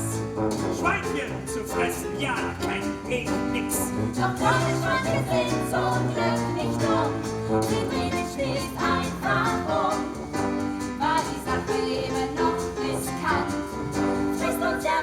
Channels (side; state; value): both; identical; correlation 1.00